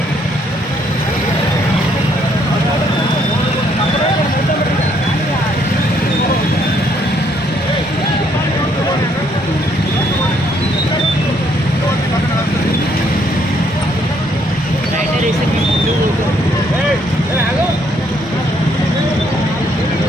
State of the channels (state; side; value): normal; both; correlation 0.69